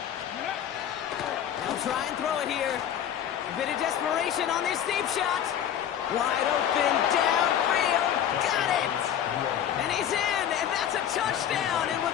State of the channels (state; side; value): quieter; right; 9.8 dB